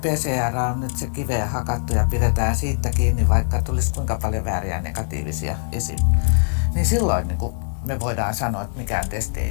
on nyt se kiveen hakattu ja pidetään siitä kiinni, vaikka tulisi kuinka paljon vääriä negatiivisia esiin, niin silloin niin kuin me voidaan sanoa, että mikään testi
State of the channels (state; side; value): silent; right; digital silence